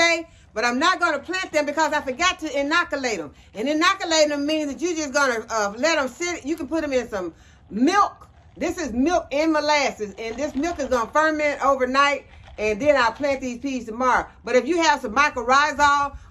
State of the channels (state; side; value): identical; both; correlation 1.00